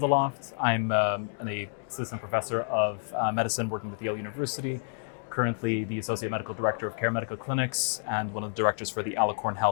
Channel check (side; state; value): right; silent; 58 dB below the other